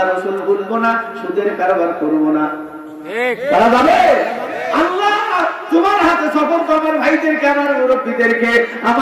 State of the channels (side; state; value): both; identical; correlation 1.00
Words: রাসূল ভুলবো না, সুদের কারবার করব না। ঠিক তারা যাবে। আল্লাহ তোমার হাতে সফর্দ আমার ভাইদেরকে, আমার মুরব্বীদেরকে,